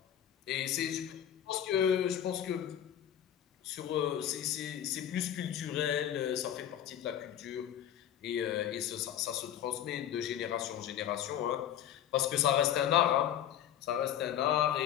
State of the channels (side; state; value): right; quieter; 10.6 dB